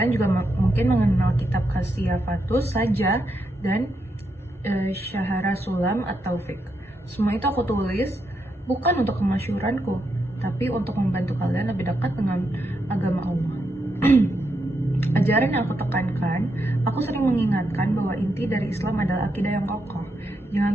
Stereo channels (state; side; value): normal; both; correlation 0.82